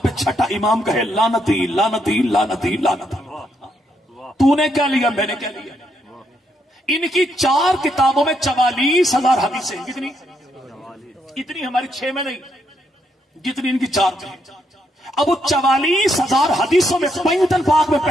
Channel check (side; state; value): both; normal; correlation 0.76